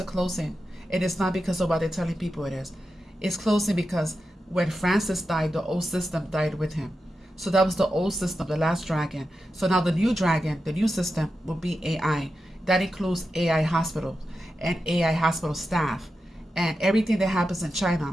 closing. It is not because of what they're telling people it is. It's closing because when Francis died, the old system died with him. So that was the old system, the last dragon. So now the new dragon, the new system will be AI. That includes AI hospitals and AI hospital staff. And everything that happens in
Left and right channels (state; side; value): normal; both; correlation 0.90